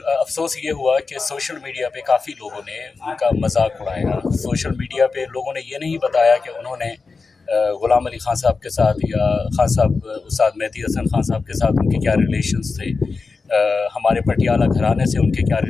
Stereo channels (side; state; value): right; quieter; 4.4 dB